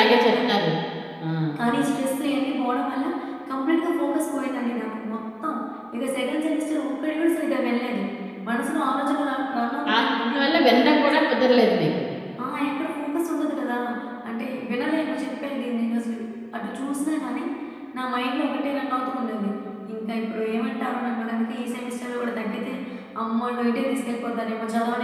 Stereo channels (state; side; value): identical; both; correlation 1.00